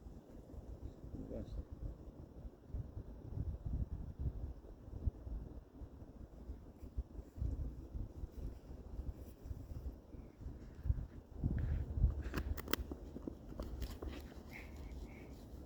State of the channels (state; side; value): identical; both; correlation 1.00